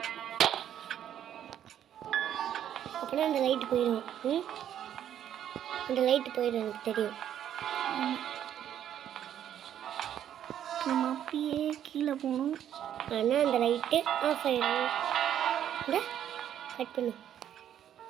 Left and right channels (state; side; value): quieter; left; 10.3 dB